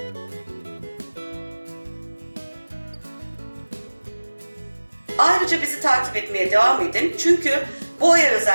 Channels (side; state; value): both; inverted; correlation -1.00